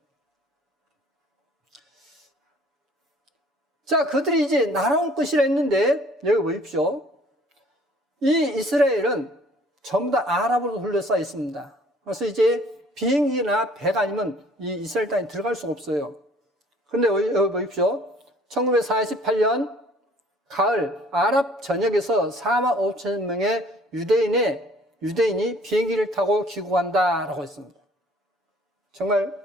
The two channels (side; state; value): both; normal; correlation 0.55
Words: 자, 그들이 이제 날아올 것이라 했는데 여기 보십시오. 이 이스라엘은 전부 다 아랍으로 둘러싸여 있습니다. 그래서 이제 비행기나 배가 아니면 이 이스라엘 땅에 들어갈 수가 없어요. 그런데 여기 보십시오. 1948년 가을 아랍 전역에서 4만 5천 명의 유대인이 비행기를 타고 귀국한다라고 했습니다.